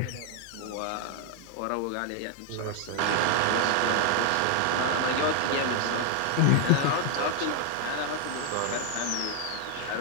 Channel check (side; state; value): both; different; correlation 0.00